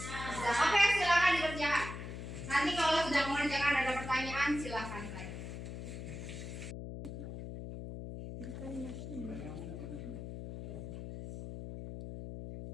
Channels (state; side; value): noise; left; hum, 8 dB below the sound